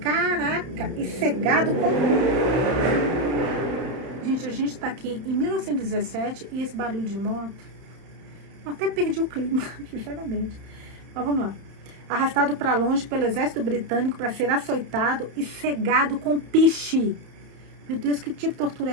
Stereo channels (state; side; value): late; left; 31 ms